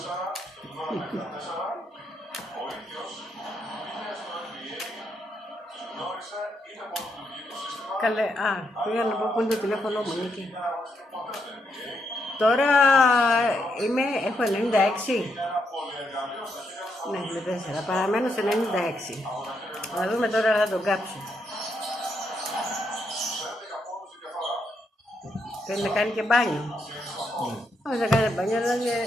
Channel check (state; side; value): normal; both; correlation 0.79